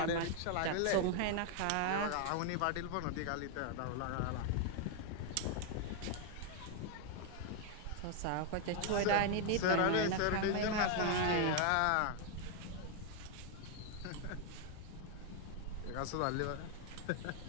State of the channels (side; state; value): both; different; correlation 0.00